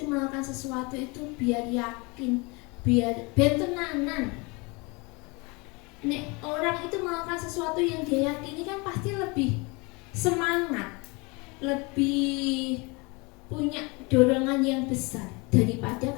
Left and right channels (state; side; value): quieter; right; 27.9 dB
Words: melakukan sesuatu itu biar yakin, biar tenanan. Nek orang itu melakukan sesuatu yang dia yakini kan pasti lebih semangat, lebih punya dorongan yang besar daripada